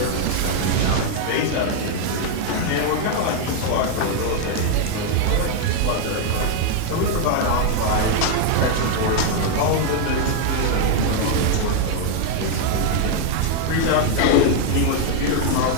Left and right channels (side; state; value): both; different; correlation 0.00